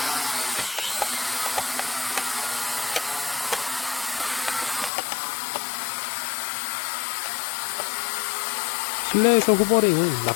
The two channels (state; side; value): drops out; right; at 4.9 s